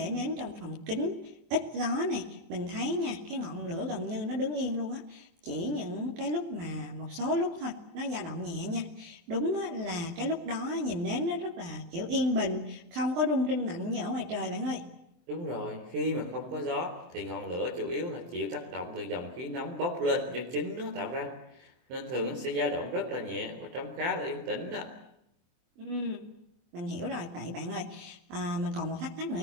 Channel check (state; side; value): late; left; 24 ms